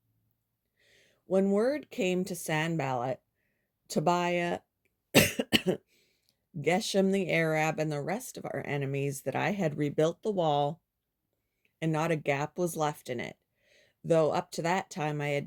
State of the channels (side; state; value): both; identical; correlation 1.00